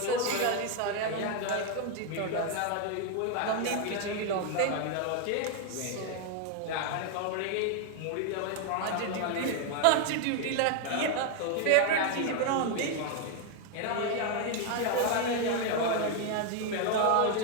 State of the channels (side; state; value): both; different; correlation 0.01